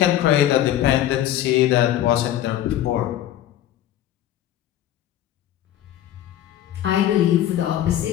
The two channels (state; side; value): quieter; right; 12.3 dB